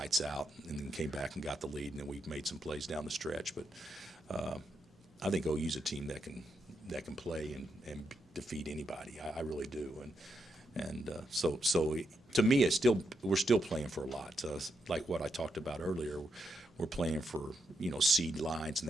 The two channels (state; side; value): normal; both; correlation 0.83